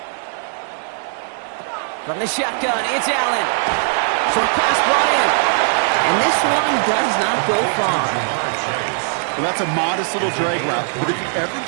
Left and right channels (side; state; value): left; silent; 66 dB below the other